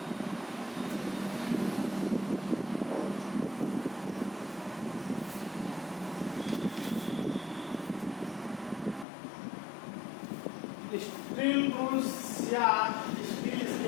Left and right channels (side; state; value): right; drops out; at 9.1 s